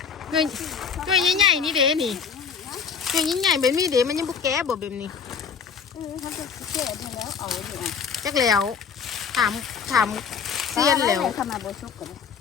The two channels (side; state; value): right; quieter; 6.5 dB